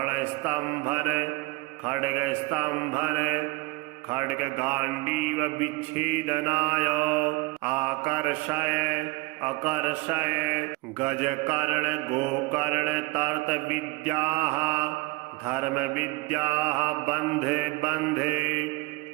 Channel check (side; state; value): left; quieter; 23.2 dB